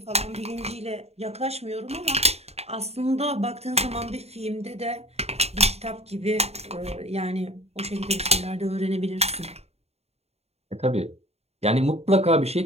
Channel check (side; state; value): left; late; 0.30 ms